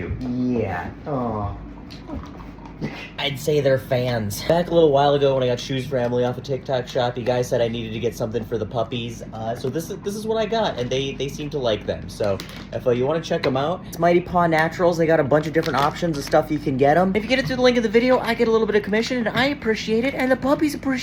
Yeah. Oh. I'd say they're fans. Back a little while ago when I got Shoes for Emily off a TikTok shop, you guys said I needed to get something for the puppies. So this is what I got, and they seem to like them. So if you want to check them out, it's Mighty Paw Naturals. They got a bunch of different options of stuff you can get them. If you get it through the link in the video, I get a little bit of commission, and I appreciate it, and the puppies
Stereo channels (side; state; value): both; identical; correlation 1.00